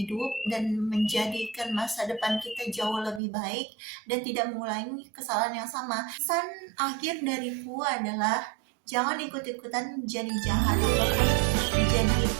dan menjadikan masa depan kita jauh lebih baik dan tidak mengulangi kesalahan yang sama. Pesan akhir dariku adalah jangan ikut-ikutan menjadi jahat ataupun menjadi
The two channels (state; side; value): drops out; left; at 3.2 s